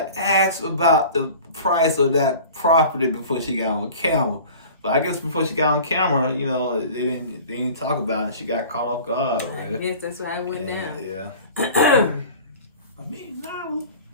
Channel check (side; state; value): both; inverted; correlation -0.42